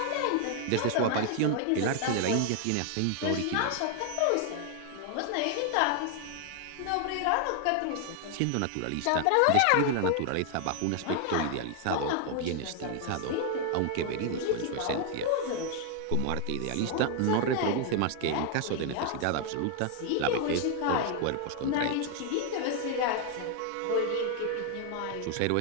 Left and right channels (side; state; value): both; different; correlation 0.00